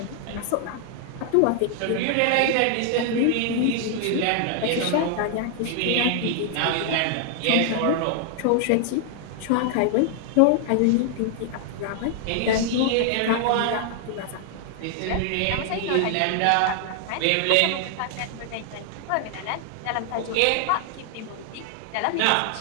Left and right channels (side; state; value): both; different; correlation 0.00